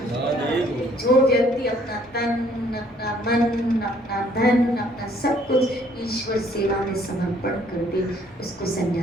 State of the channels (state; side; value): normal; both; correlation 0.62